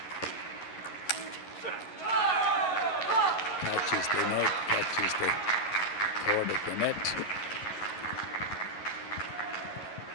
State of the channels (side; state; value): right; late; 11 ms